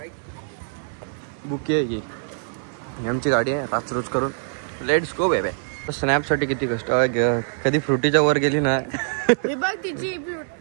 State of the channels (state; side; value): silent; left; digital silence